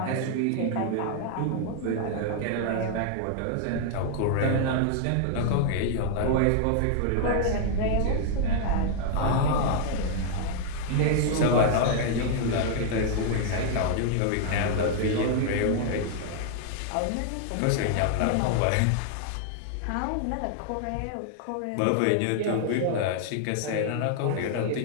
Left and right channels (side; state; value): both; different; correlation -0.01